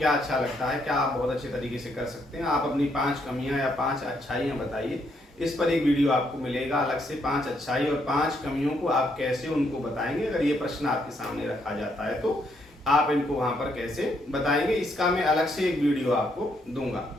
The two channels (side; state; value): both; normal; correlation 0.74